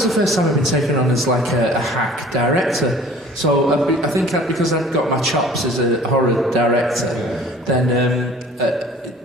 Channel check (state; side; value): normal; both; correlation 0.48